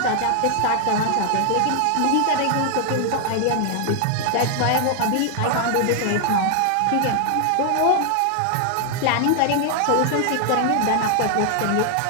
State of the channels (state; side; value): different; both; correlation 0.00